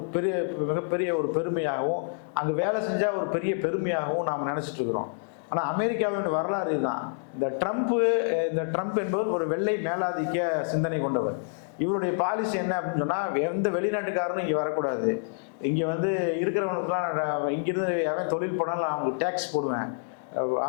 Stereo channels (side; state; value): right; silent; digital silence